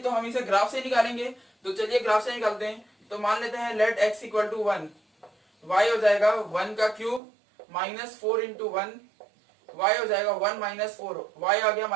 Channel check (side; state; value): left; drops out; at 7.2 s